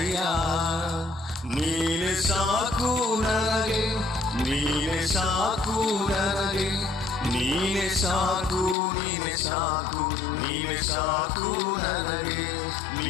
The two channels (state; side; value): drops out; right; at 8.8 s